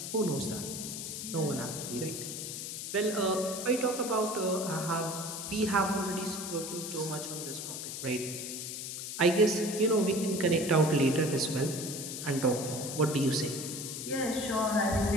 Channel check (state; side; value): noise; left; hiss, 6 dB below the sound